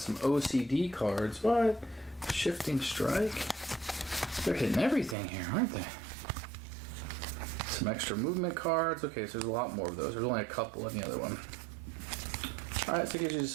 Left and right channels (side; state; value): left; drops out; at 5.2 s